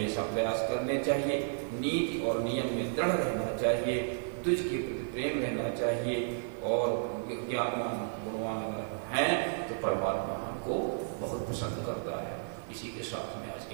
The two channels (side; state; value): left; silent; digital silence